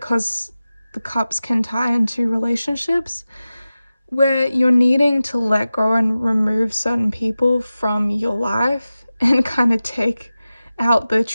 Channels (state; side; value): inverted; both; correlation -0.95